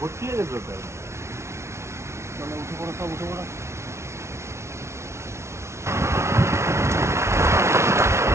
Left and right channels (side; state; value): left; late; 0.13 ms